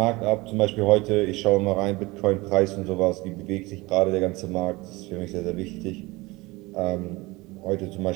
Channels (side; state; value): left; quieter; 22.3 dB